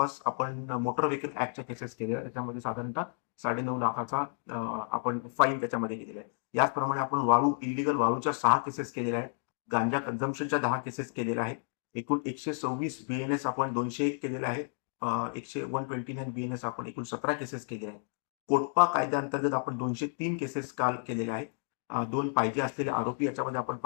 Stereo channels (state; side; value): silent; right; 57 dB below the other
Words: आपण मोटर व्हेकल ऍक्टच्या केसेस केलेल्या आहेत. त्याच्यामध्ये साधारणतः 9.5 लाखाचा आपण फाईन त्याच्यामध्ये केलेला आहे. याचप्रमाणे आपण वाळू इलिगल वाळूच्या 6 केसेस केलेल्या आहेत. गांजा कन्झम्पशनच्या 10 केसेस केलेल्या आहेत. एकूण 126 बीएनएस आपण 201 केलेले आहेत. 129 बीएनएस आपण एकूण 17 केसेस केलेल्या आहेत. कोटपा कायद्याअंतर्गत आपण 203 केसेस काल केलेल्या आहेत. 2 पाहिजे असलेले आरोपी याच्यामध्ये आपण